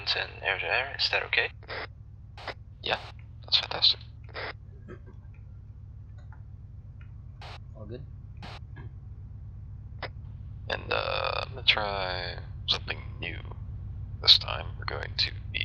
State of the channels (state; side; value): identical; both; correlation 1.00